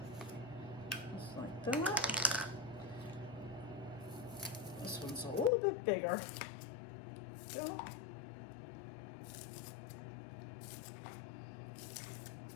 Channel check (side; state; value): right; drops out; at 5.5 s